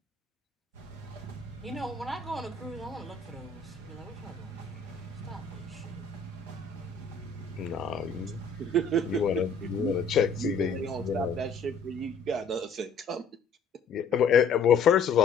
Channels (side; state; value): right; quieter; 4.5 dB